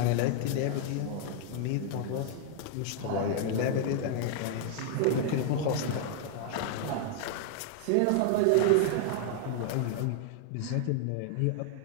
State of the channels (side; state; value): both; different; correlation 0.00